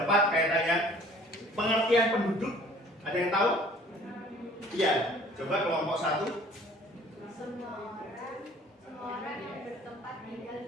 kaitannya pengertian penduduk. Ada yang tahu? Iya, coba kelompok 1.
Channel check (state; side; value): normal; both; correlation 0.52